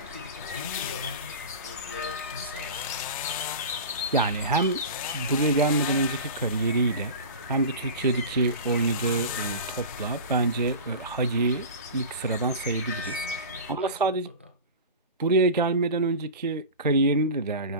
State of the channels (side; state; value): both; inverted; correlation -0.31